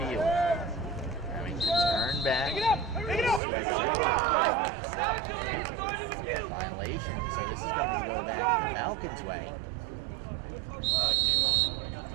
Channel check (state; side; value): drops out; left; at 3.4 s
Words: Having to turn back. Switzer. Violation. So this is going to go back the Falcons' way.